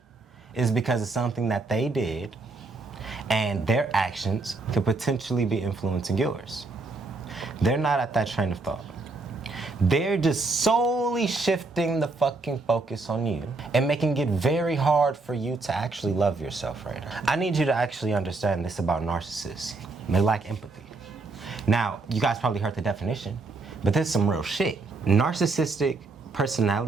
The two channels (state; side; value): quieter; left; 3.5 dB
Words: is because of something that they did, and their actions could potentially be influencing yours. They're not at that train of thought. They're just solely shifting the fucking focus on you and making it very hard for you to actually love yourself right now. I need you to actually understand this about narcissists. They lack empathy. Now, you guys probably heard the definition, but this is some real shit. Narcissistic